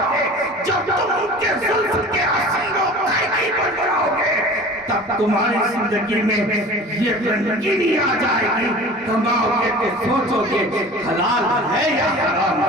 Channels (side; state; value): both; normal; correlation 0.40